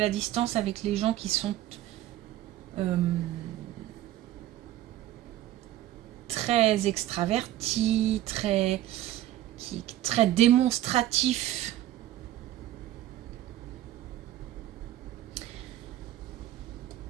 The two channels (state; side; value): quieter; left; 13.9 dB